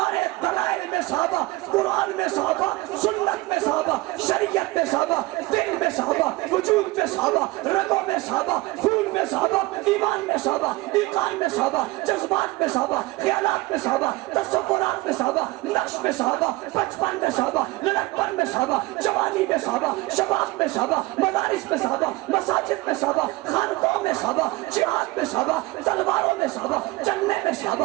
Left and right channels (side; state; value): left; quieter; 21.0 dB